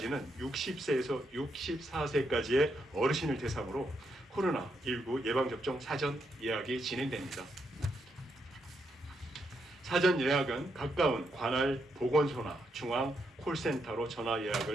60세에서 64세까지의 어르신을 대상으로 코로나19 예방접종 사전 예약이 진행됩니다. 사전 예약은 가까운 관할 보건소나 중앙 콜센터로 전화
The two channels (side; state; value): both; normal; correlation 0.80